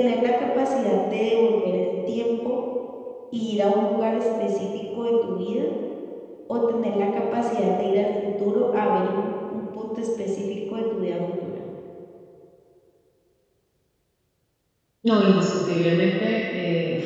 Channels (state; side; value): identical; both; correlation 1.00